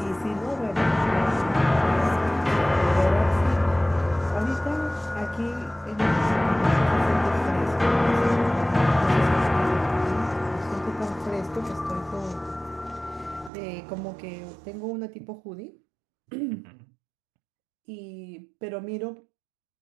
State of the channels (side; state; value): left; drops out; at 13.5 s